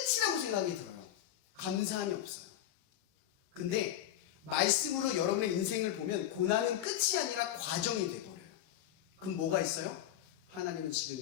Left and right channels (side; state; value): right; quieter; 11.8 dB